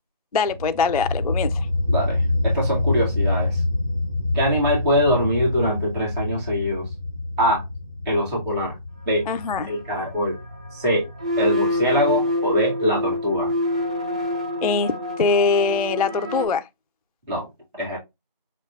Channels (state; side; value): inverted; both; correlation -0.40